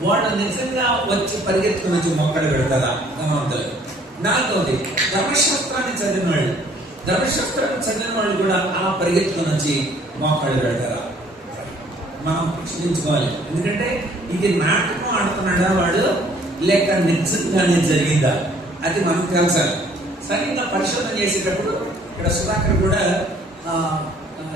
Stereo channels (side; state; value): both; normal; correlation 0.59